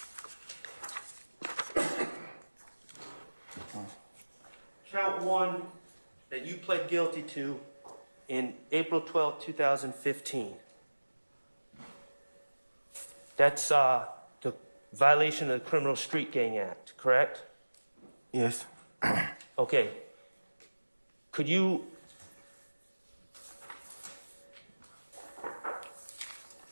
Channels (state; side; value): inverted; both; correlation -1.00